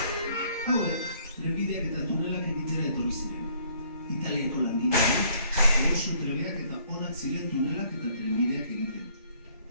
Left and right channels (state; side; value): inverted; both; correlation -0.62